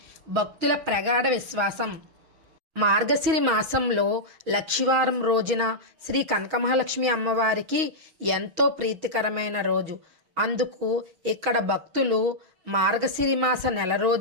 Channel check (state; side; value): late; left; 6.3 ms